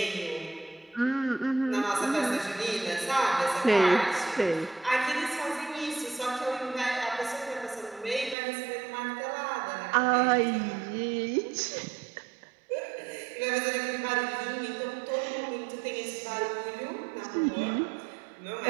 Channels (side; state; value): left; drops out; at 8.3 s